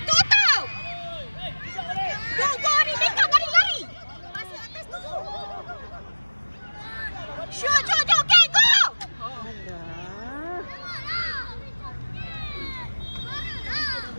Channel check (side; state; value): both; inverted; correlation -1.00